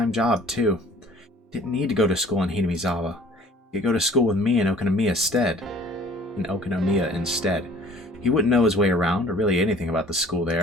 job, too. He didn't need to go to school in Hinamizawa. He could go to school with me in Okunomiya instead. He wouldn't know his way around, or really anything about the school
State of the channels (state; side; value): normal; both; correlation 0.51